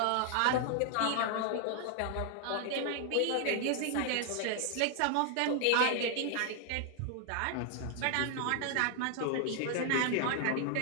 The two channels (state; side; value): different; both; correlation 0.00